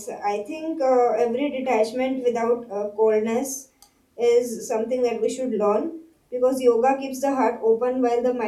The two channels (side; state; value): both; identical; correlation 1.00